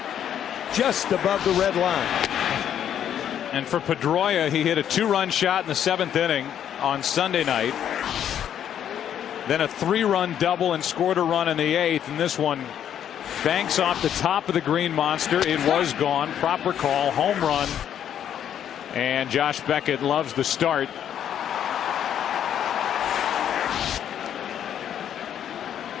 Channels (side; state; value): right; quieter; 9.7 dB